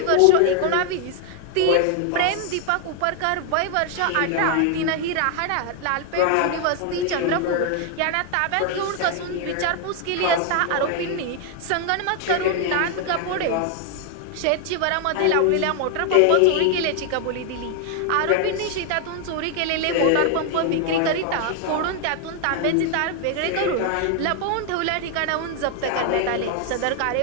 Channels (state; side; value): different; both; correlation 0.00